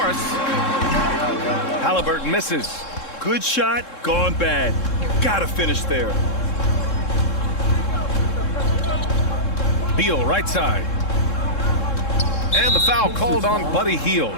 Halliburton misses. Good shot, gone bad. Gotta finish there. Beal, right side. And the foul called on Buddy Hield.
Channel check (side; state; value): right; late; 3.7 ms